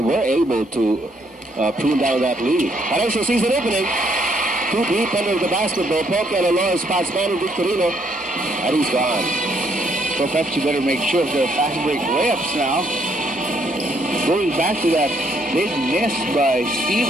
able to prune down that lead. Harancho sees an opening. Too deep under the basketball. Poke and Alora spots Manny Victorino, and he's gone. So Pepsi better make sure of their fast break layups now. Going back to that big miss by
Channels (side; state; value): both; normal; correlation 0.71